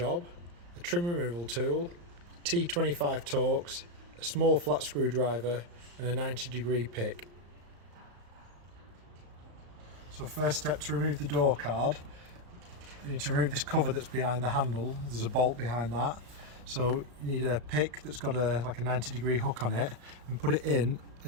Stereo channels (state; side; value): late; left; 35 ms